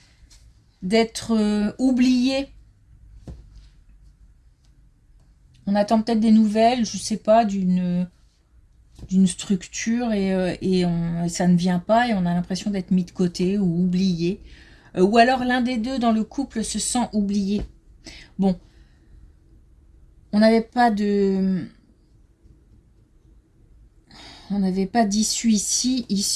oublié. On attend peut-être des nouvelles, je ne sais pas, d'une structure et ça ne vient pas et on a l'impression d'être mis de côté ou oublié. Ou alors l'un des deux dans le couple se sent oublié. Bon, on n'avait pas d'issue ici,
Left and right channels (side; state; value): both; identical; correlation 1.00